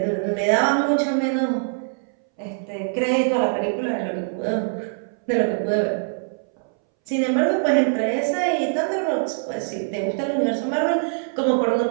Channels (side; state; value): left; silent; 62 dB below the other